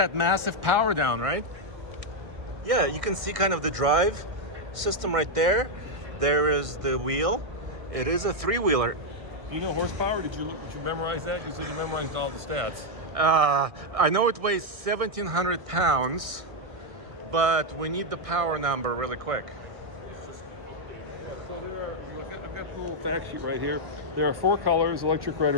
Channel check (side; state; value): left; late; 1.5 ms